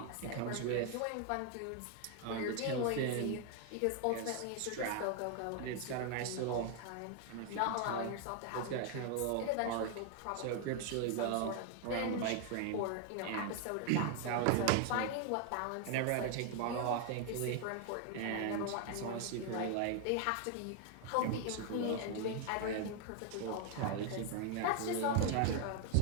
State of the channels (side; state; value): both; different; correlation 0.00